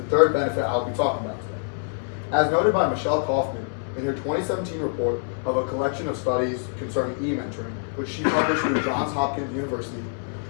third benefit I'll be talking about today. As noted by Michelle Kaufman in her 2017 report of a collection of studies concerning e-mentoring, which she published through Johns Hopkins University,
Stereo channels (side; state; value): right; silent; digital silence